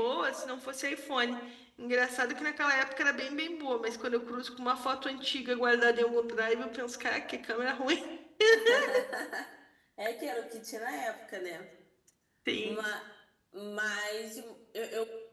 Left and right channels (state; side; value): identical; both; correlation 1.00